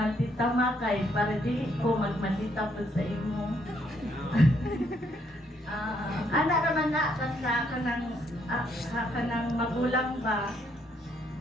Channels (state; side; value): normal; both; correlation 0.71